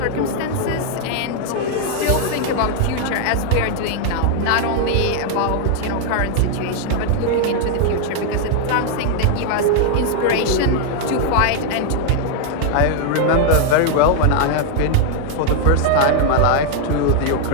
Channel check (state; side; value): different; both; correlation 0.00